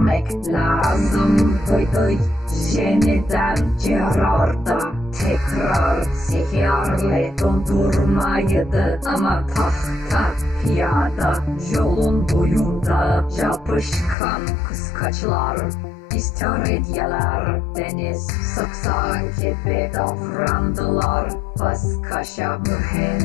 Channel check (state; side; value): drops out; right; at 14.2 s